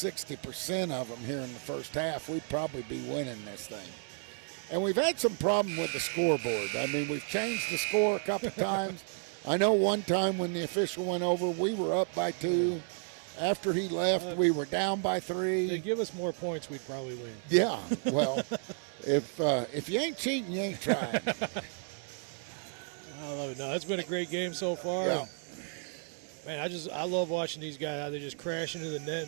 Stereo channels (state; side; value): silent; left; 56 dB below the other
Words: of them here in the first half, we'd probably be winning this thing. And we've had some problem with the scoreboard. I mean, we've changed the score a couple times. I know one time when the official went over, we were up by 2. After he left, we were down by 3. They give us more points, we'd probably win. Yeah, well, if you ain't cheating, you ain't trying. I love it. No, it's been a great game so far. Yeah. Man, I love watching these guys how they just crash into the net.